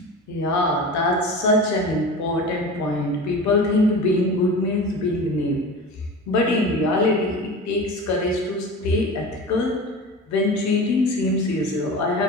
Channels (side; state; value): both; normal; correlation 0.32